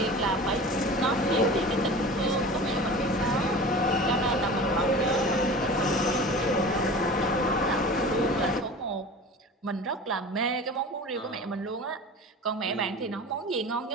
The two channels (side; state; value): both; normal; correlation 0.37